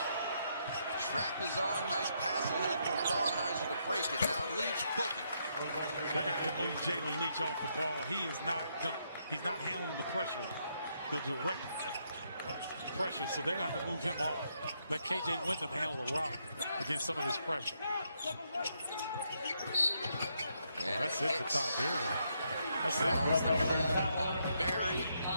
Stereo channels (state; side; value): inverted; both; correlation -0.77